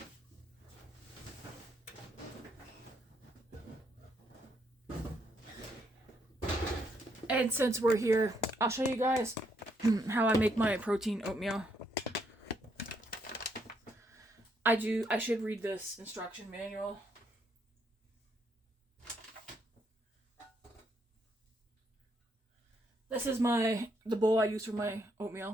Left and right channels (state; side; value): normal; both; correlation 0.74